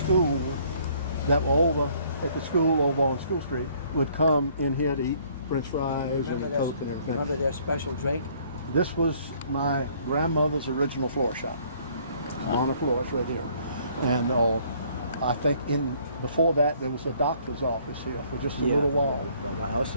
that were over at the school over on School Street would come in here to eat French fries and Coke and everything. Remember their special drink? This was my grandmother's original floor shop on the floor. It's right here. And I think before that there was a doctor's office here for just a little while. I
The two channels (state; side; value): inverted; both; correlation -0.61